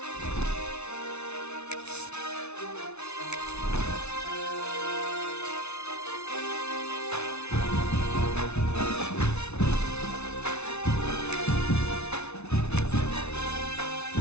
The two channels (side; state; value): right; late; 0.81 ms